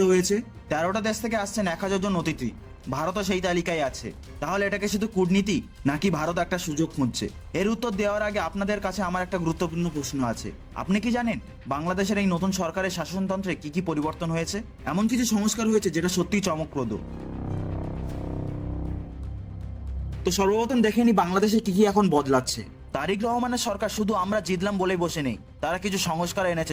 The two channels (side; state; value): both; identical; correlation 1.00